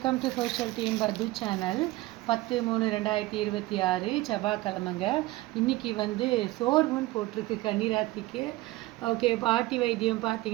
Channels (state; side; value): quieter; left; 18.8 dB